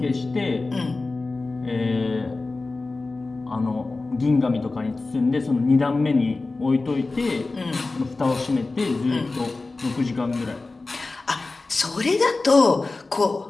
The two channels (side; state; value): right; quieter; 3.5 dB